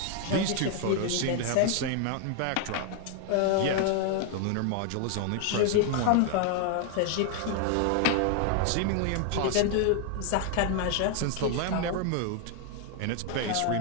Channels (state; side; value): different; both; correlation 0.00